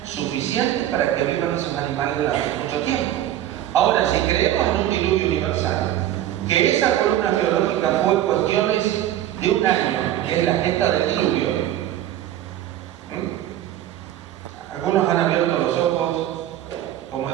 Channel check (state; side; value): quieter; left; 12.5 dB